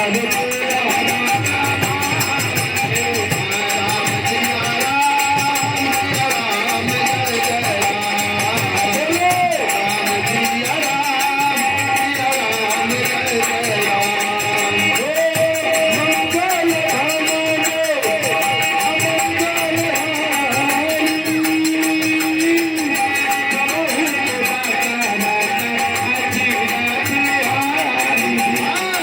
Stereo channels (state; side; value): identical; both; correlation 1.00